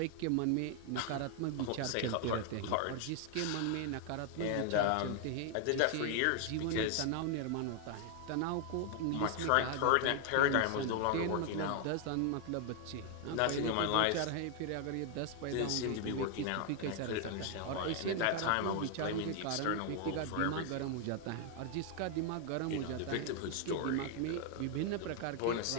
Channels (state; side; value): different; both; correlation 0.00